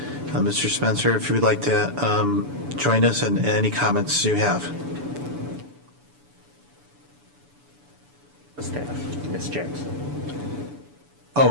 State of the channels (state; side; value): late; left; 7.0 ms